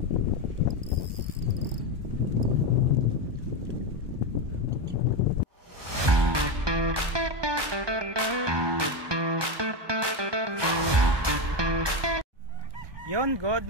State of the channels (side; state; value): left; late; 1.2 ms